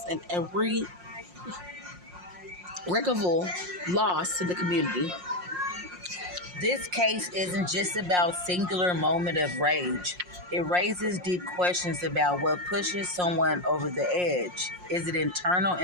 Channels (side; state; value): left; late; 5.6 ms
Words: an irreparable loss to the community. This case isn't just about singular moment of rage. It raises deep questions about what pushes someone over the edge. Is it internal